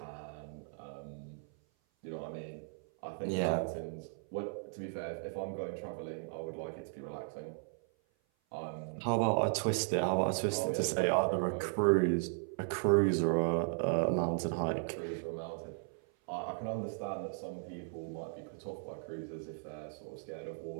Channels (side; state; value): left; silent; 54 dB below the other